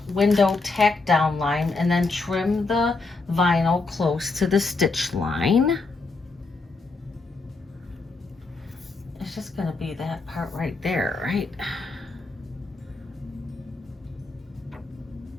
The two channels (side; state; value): right; quieter; 3.8 dB